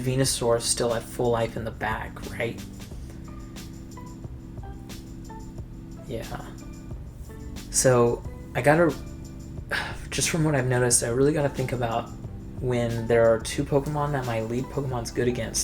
still at full life in the back, right? Yeah. So I gotta, just from what I've noticed, I really gotta think about when there are two Pokemon that my lead Pokemon's good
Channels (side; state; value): both; identical; correlation 1.00